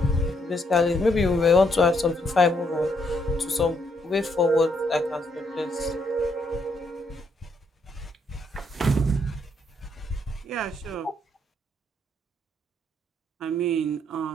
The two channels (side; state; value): both; normal; correlation 0.73